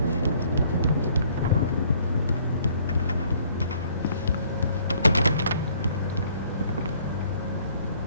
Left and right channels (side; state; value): both; inverted; correlation -0.61